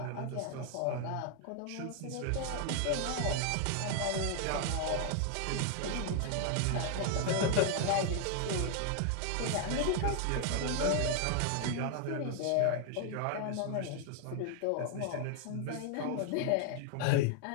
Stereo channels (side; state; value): both; different; correlation 0.00